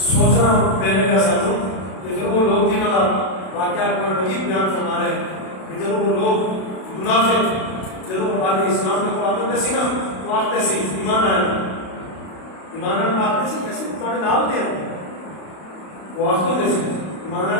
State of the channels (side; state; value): right; late; 32 ms